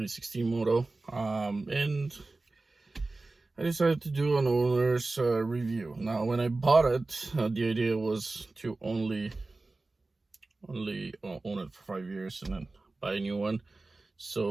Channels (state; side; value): quieter; left; 3.3 dB